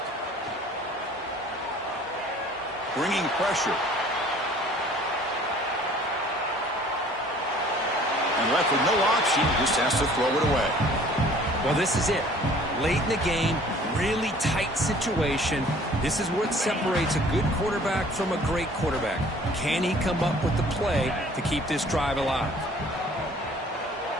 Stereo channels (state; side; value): normal; both; correlation 0.52